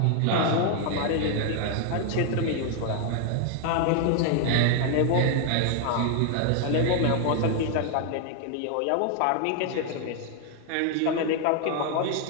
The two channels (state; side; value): different; both; correlation 0.00